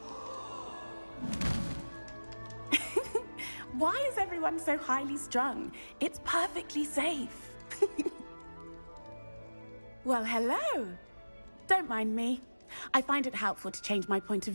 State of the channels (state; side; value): inverted; both; correlation -1.00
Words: time. Why is everyone so highly strung? It's perfectly safe. Well, hello. Don't mind me. I find it helpful to change my point of